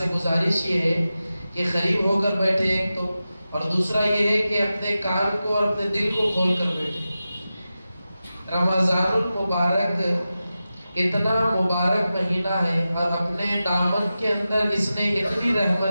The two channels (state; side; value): inverted; both; correlation -0.93